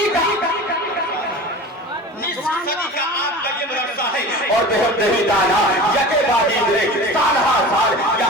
کا آپ کا یہ مدرسہ ہے اور بہت نہیں دانا یکے بادی گرے سال ہر سال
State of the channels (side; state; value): both; normal; correlation 0.35